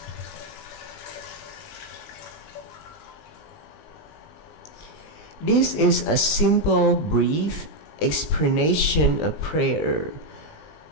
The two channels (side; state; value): right; late; 19 ms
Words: This is a simple, brief explanation of prayer.